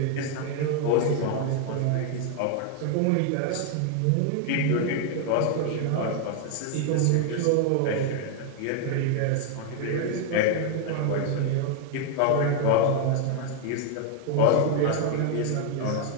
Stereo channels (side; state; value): both; different; correlation 0.00